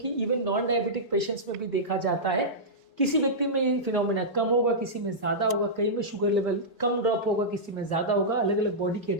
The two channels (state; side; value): normal; both; correlation -0.13